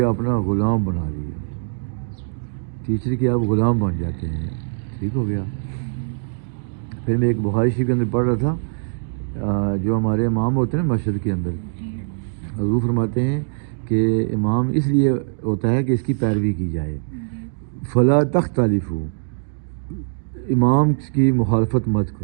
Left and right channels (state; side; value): silent; left; digital silence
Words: اپنا غلام بنا لیا. ٹیچر کے آپ غلام بن جاتے ہیں. ٹھیک ہو گیا. پھر میں ایک بخاری شریف کے اندر پڑھ رہا تھا جو ہمارے امام ہوتے ہیں نا مسجد کے اندر, حضور فرماتے ہیں کہ امام اس لیے ہوتا ہے کہ اس کی پیروی کی جائے. فلا تختلفوا, امام کی مخالفت مت